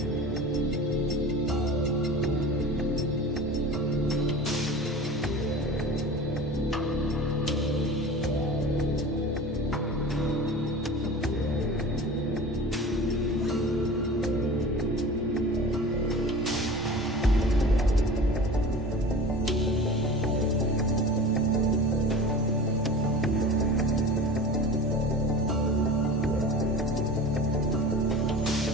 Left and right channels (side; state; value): both; normal; correlation 0.36